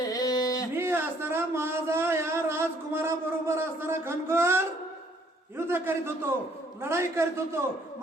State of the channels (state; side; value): normal; both; correlation 0.63